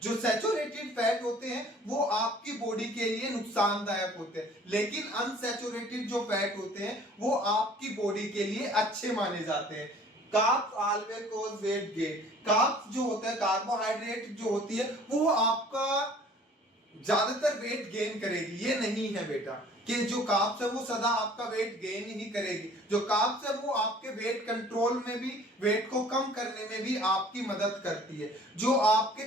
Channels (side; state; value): both; normal; correlation 0.52